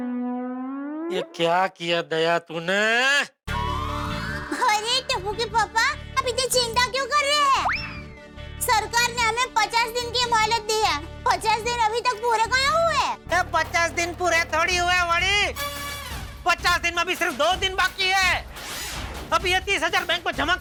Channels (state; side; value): identical; both; correlation 1.00